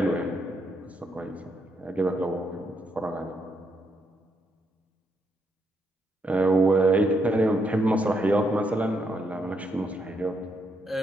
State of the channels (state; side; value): normal; both; correlation 0.77